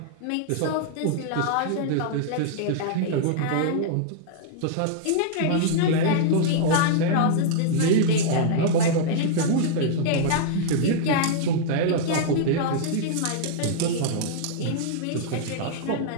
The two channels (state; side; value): different; both; correlation -0.02